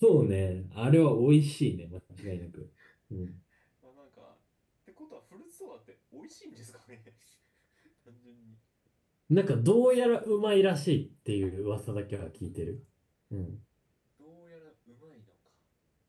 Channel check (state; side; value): identical; both; correlation 1.00